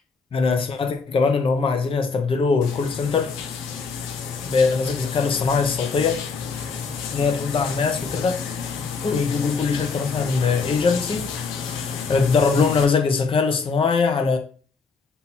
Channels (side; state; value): right; quieter; 4.7 dB